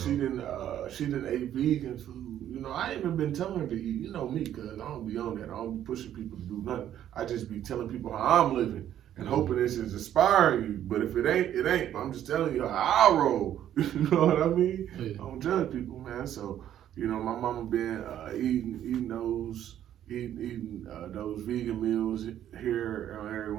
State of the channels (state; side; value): quieter; left; 11.1 dB